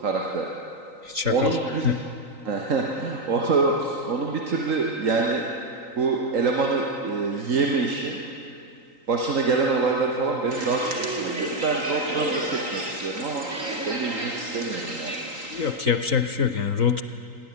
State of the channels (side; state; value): left; late; 3.9 ms